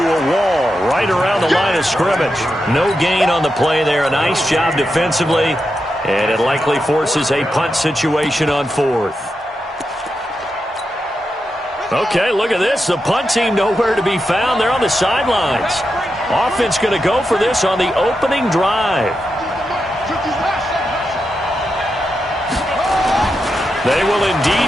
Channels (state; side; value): normal; both; correlation 0.87